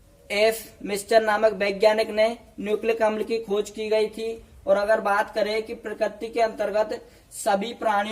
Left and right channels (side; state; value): both; identical; correlation 1.00